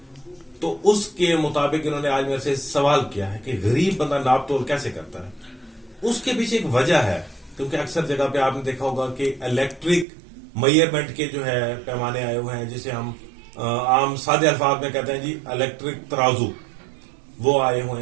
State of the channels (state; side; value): drops out; left; at 10.1 s